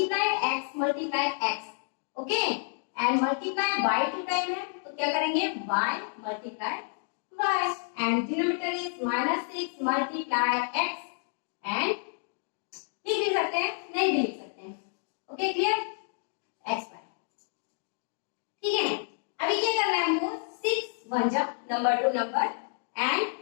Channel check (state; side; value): silent; right; 58 dB below the other